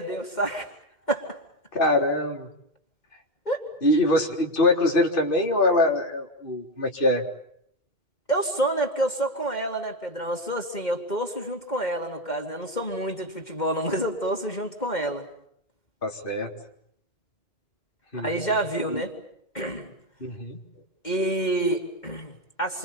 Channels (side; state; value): right; late; 2.1 ms